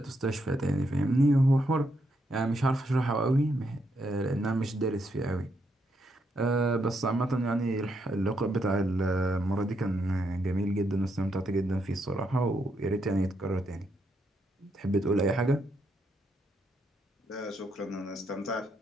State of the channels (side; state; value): both; normal; correlation 0.78